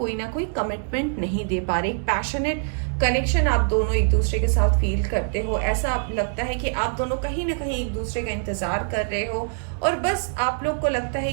ना कोई कमिटमेंट नहीं दे पा रहे। एक पैशनेट कनेक्शन आप दोनों एक दूसरे के साथ फील करते हो, ऐसा लगता है कि आप दोनों कहीं ना कहीं एक दूसरे का इंतजार कर रहे हो, और बस आप लोग को लगता है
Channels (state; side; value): silent; left; 63 dB below the other